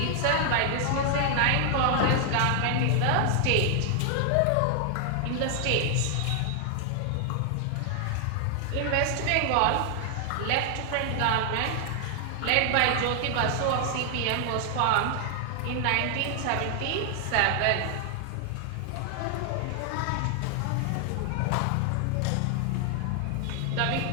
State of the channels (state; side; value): different; both; correlation 0.00